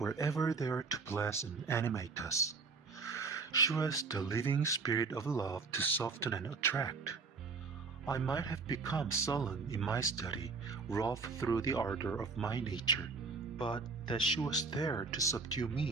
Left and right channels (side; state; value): left; quieter; 4.4 dB